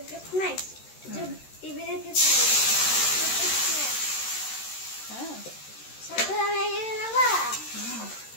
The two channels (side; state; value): right; late; 13 ms